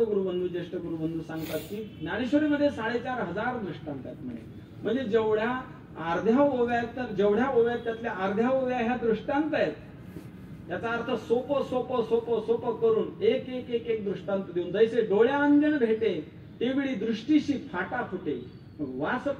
गुरुबंधू, ज्येष्ठ गुरुबंधू सांगतात की ज्ञानेश्वरीमध्ये 4500 दृष्टांत आहेत म्हणे. म्हणजे जेवढ्या अर्ध्या ओव्या आहेत, तर जेवढ्या ओव्या आहेत त्यातल्या अर्ध्या ओव्या ह्या दृष्टांत आहेत. याचा अर्थ सोपं सोपं सोपं सोपं करून एक एक एक एक दृष्टांत देऊन, जैसे डोळ्या अंजन भेटे तेवढी दृष्टीशी फाटा फुटे, वास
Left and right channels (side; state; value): both; identical; correlation 1.00